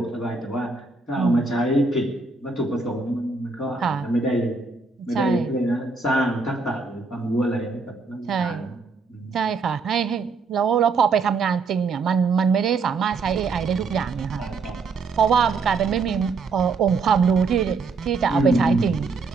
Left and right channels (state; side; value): quieter; left; 4.3 dB